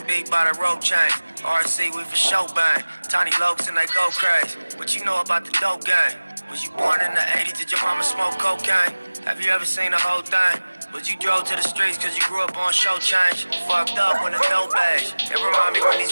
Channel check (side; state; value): both; inverted; correlation -1.00